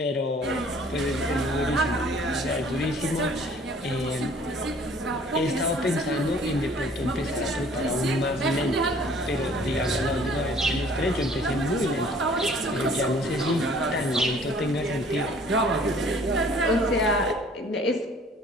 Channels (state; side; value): normal; both; correlation 0.54